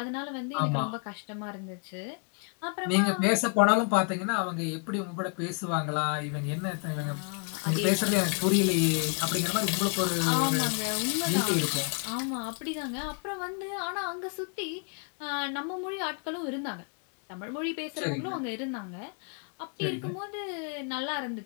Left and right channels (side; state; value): right; quieter; 37.2 dB